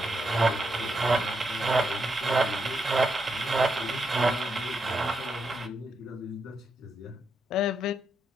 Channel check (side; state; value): both; normal; correlation 0.82